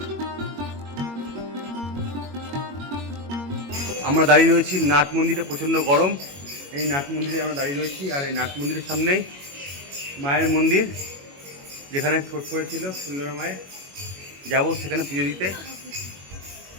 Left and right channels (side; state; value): left; late; 21 ms